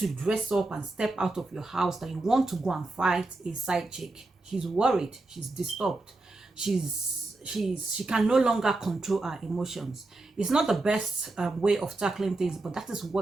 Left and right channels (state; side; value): quieter; left; 3.1 dB